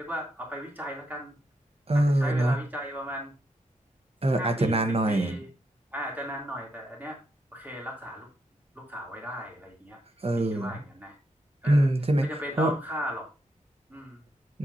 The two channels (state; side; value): normal; both; correlation 0.81